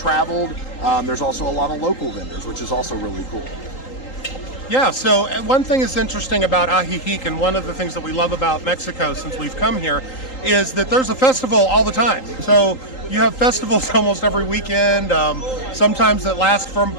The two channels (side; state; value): right; late; 3.8 ms